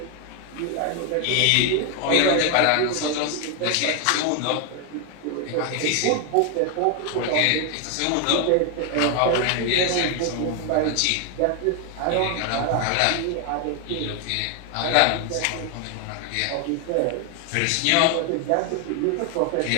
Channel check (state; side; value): different; both; correlation 0.01